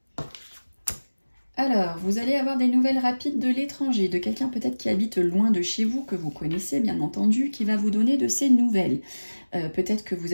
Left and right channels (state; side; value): inverted; both; correlation -1.00